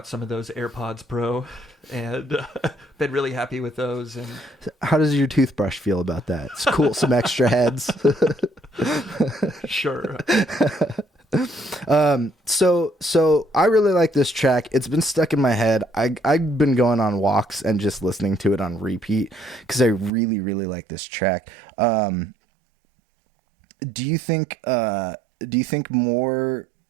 some of those AirPods Pro and been really happy with those. And how does your toothbrush feel about that? It's cool. Some extra heads. Sure. So I really like this track. It's been stuck in my head. I've been going on walks and just listening to it on repeat because I really, really like this track. Do you think more?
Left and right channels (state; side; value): drops out; left; at 20.1 s